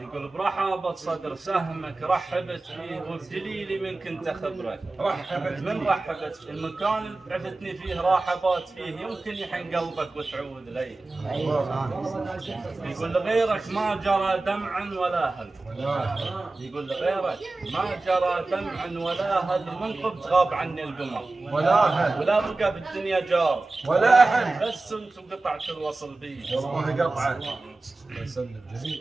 يقول برحابة صدر سهمك رحبت فيه وبدليلي من كنت خبرك رحبت فيه المكان اللي عفتني فيه راحبات فيه يمكن يحن قلبك وتعود لي. يقول لغيرك ما جرى دمع ولا هل يقول لغيرك ما جرى دمع ولا هل منقب تغاب عني القمر ولا بقى بالدنيا جار ولا احد بس انتم قطعت الوصل بي. والله قطعه الله يسلم.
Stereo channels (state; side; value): quieter; left; 3.2 dB